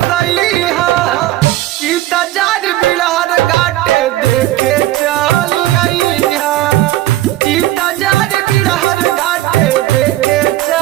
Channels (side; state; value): left; quieter; 15.6 dB